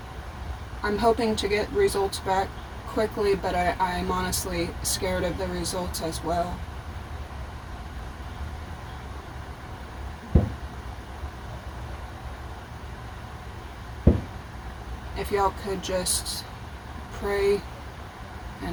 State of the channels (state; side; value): identical; both; correlation 1.00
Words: hoping to get results back quickly, but I'm honestly scared of the results as well. If y'all could just pray